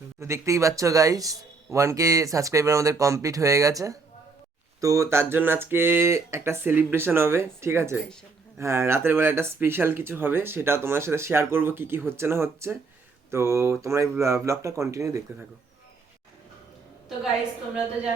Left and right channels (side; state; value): left; quieter; 4.3 dB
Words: তো দেখতেই পাচ্ছ গাইস, 1K সাবস্ক্রাইবার আমাদের কমপ্লিট হয়ে গেছে। তো তার জন্য আজকে একটা সেলিব্রেশন হবে, ঠিক আছে? হ্যাঁ, রাতের বেলা একটা স্পেশাল কিছু হবে, সেটা তোমাদের সাথে শেয়ার করব কি কি হচ্ছে না হচ্ছে। তো তোমরা এই ব্লগটা কন্টিনিউ দেখতে থাকো। তো গাইস, তোমরা তো